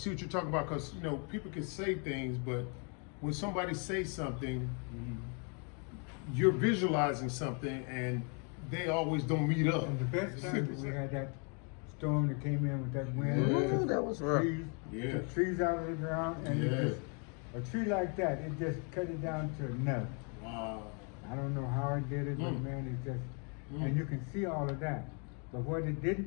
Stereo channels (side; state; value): right; quieter; 37.5 dB